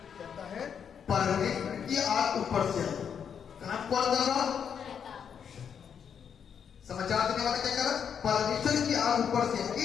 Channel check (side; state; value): right; quieter; 7.6 dB